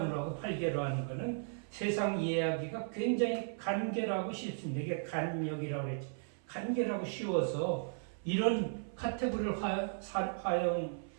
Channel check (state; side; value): silent; left; 54 dB below the other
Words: 하고 8개로 하는 거는 세상 이해하기가 굉장히 간결하고 쉽습니다. 이게 간역이라고 그랬지. 간결하고 쉬워서 이런 카테고리를